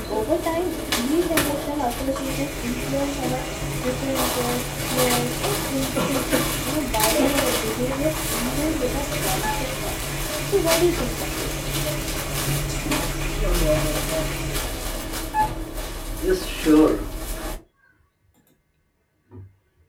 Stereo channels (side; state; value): both; identical; correlation 1.00